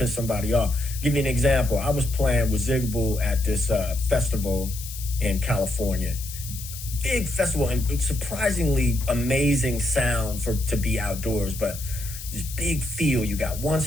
somebody off. Give you an example. I was playing with Zigaboo at this festival in California. Big festival and surprisingly amazing sound to be outdoors, but this big field. You got one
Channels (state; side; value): noise; left; hiss, 11 dB below the sound